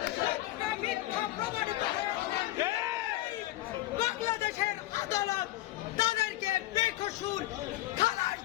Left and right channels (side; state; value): right; quieter; 16.7 dB